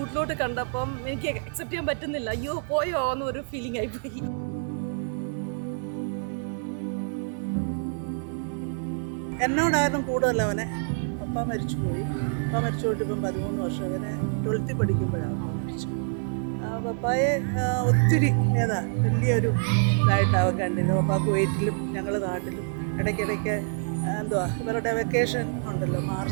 കണ്ടപ്പം എനിക്ക് അക്സെപ്റ്റ് ചെയ്യാൻ പറ്റുന്നില്ല. അയ്യോ പോയോ എന്നൊരു ഫീലിംഗ് ആയിപ്പോയി. എന്നോടായിരുന്നു കൂടുതൽ അവനെ. പപ്പ മരിച്ചുപോയി. പപ്പ മരിച്ചു പോയിട്ട് ഇപ്പം 13 വർഷം. അവനെ 12th പഠിക്കുമ്പോഴാണ് മരിച്ചു. പപ്പായെ ഒത്തിരി വലിയൊരു ഇതായിട്ടാണ് കണ്ടിരുന്നത്. പപ്പ കുവൈറ്റിലും ഞങ്ങൾ നാട്ടിലും ഇടയ്ക്കിടയ്ക്ക് ഇവരുടെ വെക്കേഷൻ ഉണ്ടല്ലോ,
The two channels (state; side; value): silent; left; digital silence